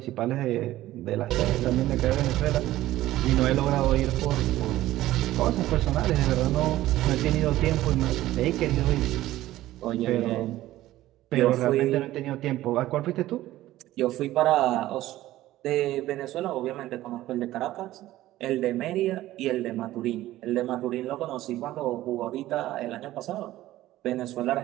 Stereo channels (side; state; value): left; quieter; 15.3 dB